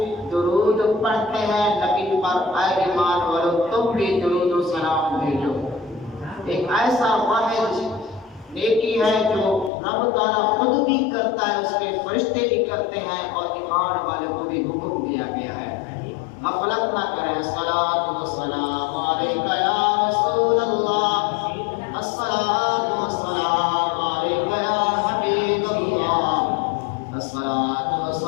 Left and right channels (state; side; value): drops out; right; at 9.7 s